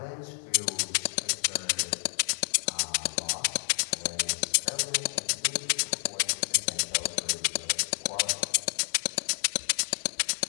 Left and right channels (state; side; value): silent; right; digital silence